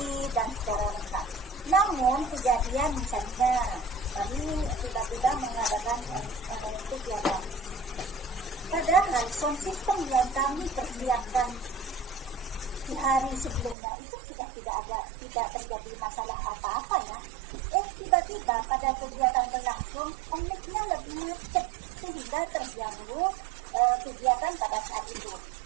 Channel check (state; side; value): drops out; left; at 13.8 s